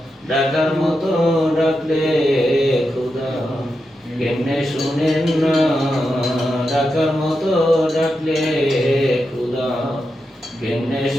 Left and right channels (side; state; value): both; normal; correlation 0.87